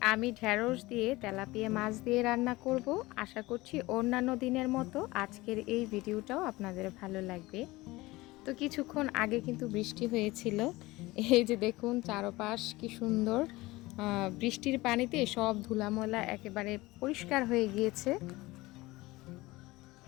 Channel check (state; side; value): quieter; right; 20.3 dB